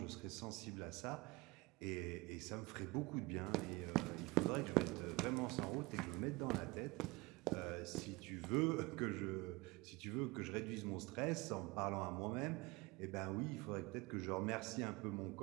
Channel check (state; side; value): quieter; left; 23.8 dB